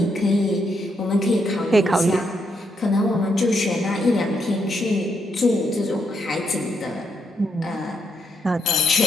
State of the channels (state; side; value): normal; both; correlation 0.77